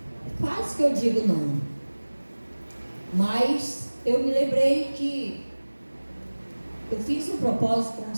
quase que eu digo não, mas eu me lembrei que eu fiz um propósito com o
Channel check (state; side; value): inverted; both; correlation -1.00